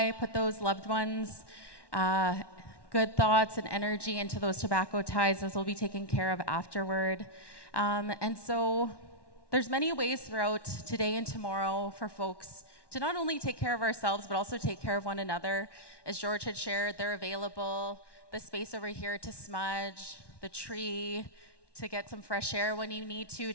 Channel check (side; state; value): right; late; 1.1 ms